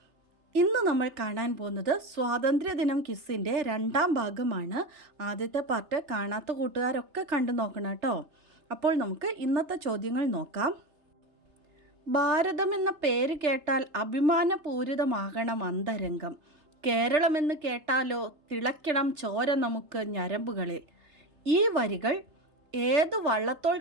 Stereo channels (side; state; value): left; late; 3.3 ms